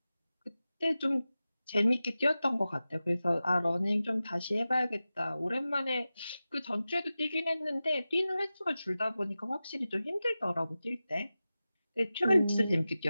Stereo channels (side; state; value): both; inverted; correlation -0.94